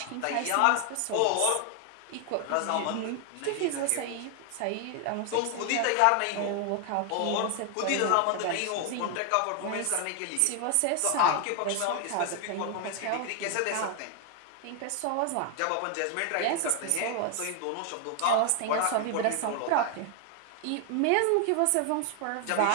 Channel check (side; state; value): both; different; correlation 0.00